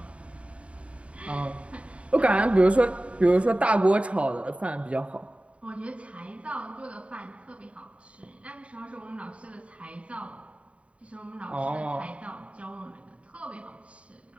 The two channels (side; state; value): left; late; 0.063 ms